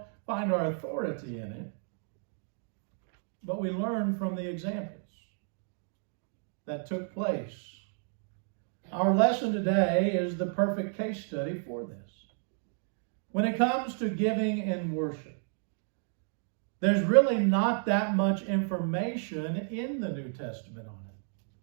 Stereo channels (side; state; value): left; silent; 57 dB below the other